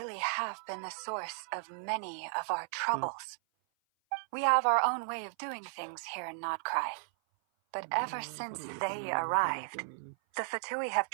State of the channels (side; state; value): left; silent; 54 dB below the other